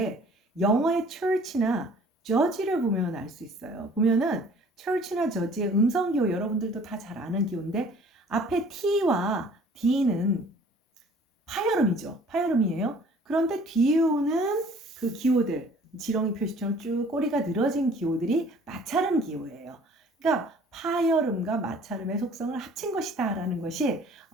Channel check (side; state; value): both; normal; correlation 0.52